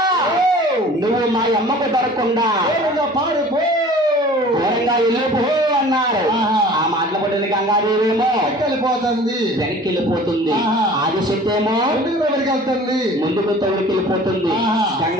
నువ్వు మా అమ్మకు దొరకకుండా దూరంగా వెళ్ళిపో అన్నారు. ఆ మాటలు పడిన గంగాదేవేమో వెళ్ళిపోతుంది, వెనక్కి వెళ్ళిపోతుంది. ఆదిశక్తి ఏమో వెళ్తుంది, ముందుకు తొలికి వెళ్ళిపోతుంది.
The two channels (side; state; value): both; normal; correlation 0.45